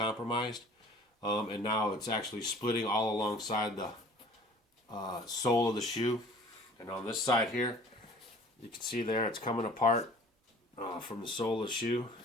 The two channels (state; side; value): normal; both; correlation 0.48